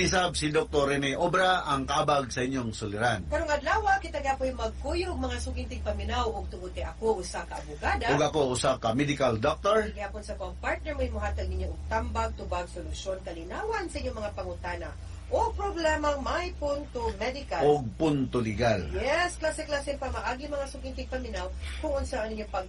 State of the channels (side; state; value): both; identical; correlation 1.00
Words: si Dr. Rene Obra ang kabag sa inyong suliran. Karong adlaw kita gapoy magkuyog mga sukintig paminaw ug tungod kay ako usa ka abogada. Ug ako usa ka medical doctor. Gihapon sa kong partner may muhatag ninyo og tambag tubag solusyon kalinawan sa inyong mga pangutana o problemang may punto medical. Og punto legal. Yes, klase-klase pa maagi mga sukintig paminaw kung unsa ang inyong